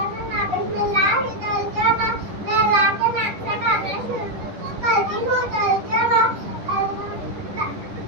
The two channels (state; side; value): late; left; 10 ms